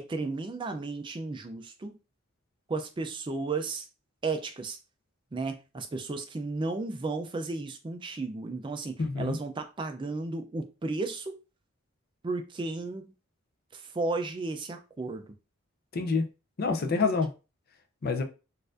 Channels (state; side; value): normal; both; correlation 0.49